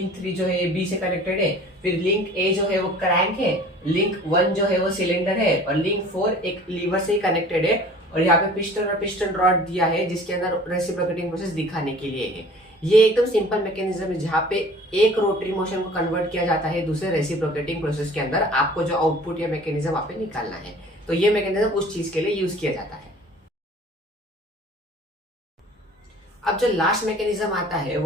3 जो है बी से कनेक्टेड है, फिर लिंक ए जो है वो क्रैंक है, लिंक 1 जो है वो सिलेंडर है, और लिंक 4 एक लीवर से ही कनेक्टेड है, और यहाँ पे पिस्टन और पिस्टन रॉड दिया है जिसके अंदर रेसिप्रोकेटिंग प्रोसेस दिखाने के लिए है। ये एकदम सिंपल मैकेनिज्म है जहाँ पे एक रोटरी मोशन को कन्वर्ट किया जाता है दूसरे रेसिप्रोकेटिंग प्रोसेस के अंदर। आपको जो आउटपुट या मैकेनिज्म वहां पे निकालना है, तो ये मैकेनिज्म उस चीज के लिए यूज किया जाता है। अब जो लास्ट मैकेनिज्म आता है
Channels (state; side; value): normal; both; correlation 0.47